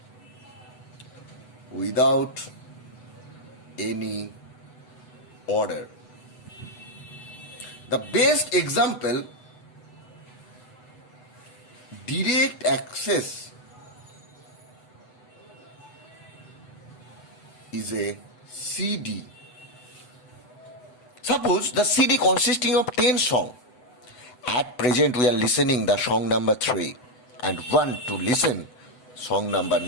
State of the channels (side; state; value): right; late; 8.0 ms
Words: without any order. The best example, direct access, is a CD. Suppose the CD consisting of 10 songs. At present we are listening the song number 3 and want to listen song number